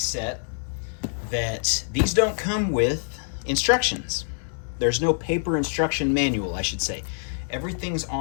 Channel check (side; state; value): right; silent; digital silence